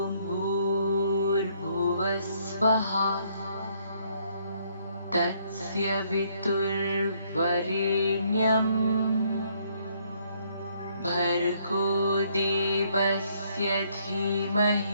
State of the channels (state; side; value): inverted; both; correlation -0.68